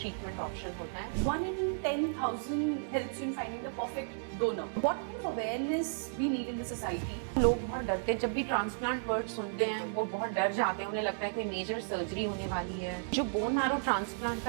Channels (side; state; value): left; silent; digital silence